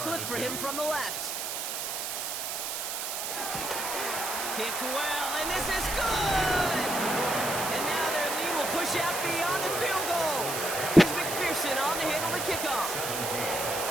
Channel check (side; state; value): right; noise; hiss, 3 dB below the sound